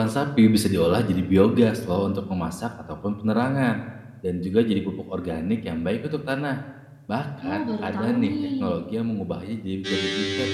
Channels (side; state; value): both; identical; correlation 1.00